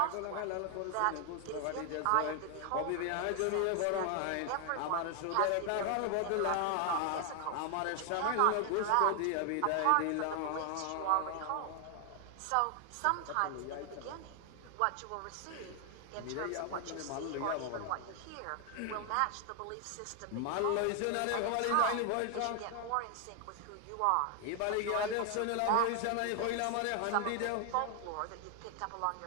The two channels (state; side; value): different; both; correlation 0.00